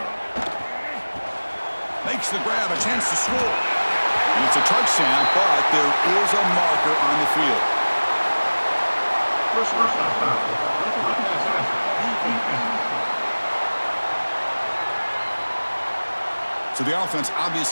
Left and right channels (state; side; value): inverted; both; correlation -1.00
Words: Makes the grab, a chance to score. And it's a touchdown, but there is a marker on the field. So the offense